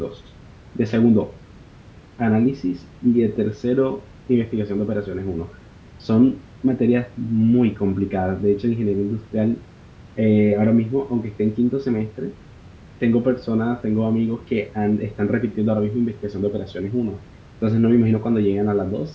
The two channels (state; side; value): identical; both; correlation 1.00